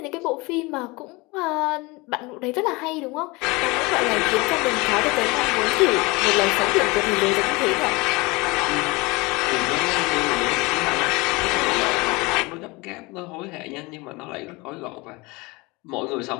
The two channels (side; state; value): right; quieter; 24.5 dB